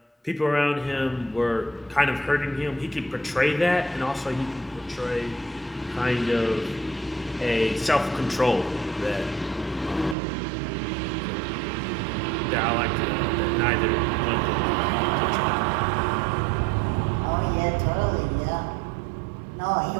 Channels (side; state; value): left; drops out; at 10.2 s